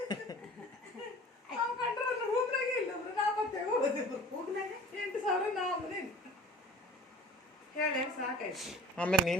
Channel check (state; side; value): normal; both; correlation 0.43